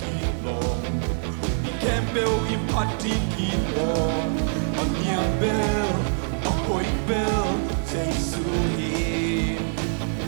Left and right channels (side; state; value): left; silent; digital silence